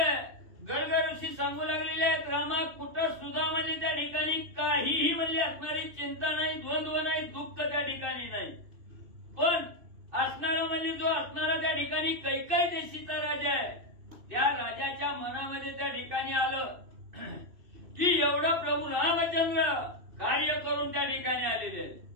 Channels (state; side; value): late; left; 2.6 ms